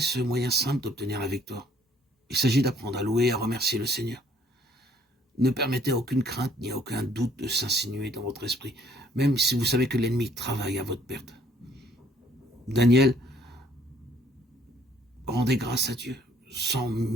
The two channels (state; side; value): normal; both; correlation 0.62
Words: moyen simple d'obtenir la victoire. Il s'agit d'apprendre à louer et à remercier le Seigneur. Ne permettez à aucune crainte ni à aucun doute de s'insinuer dans votre esprit, même si vous savez que l'ennemi travaille à votre perte. Daniel rendait grâce à Dieu, sans